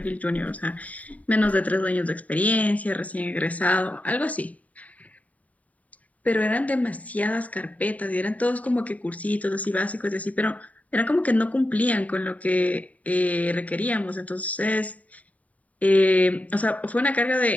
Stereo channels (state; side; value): late; right; 0.070 ms